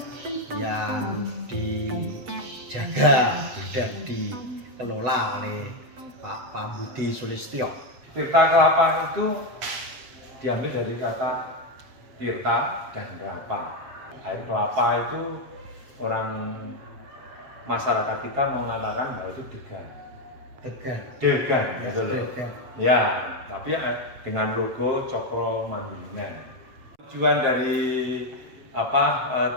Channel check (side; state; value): left; late; 8.0 ms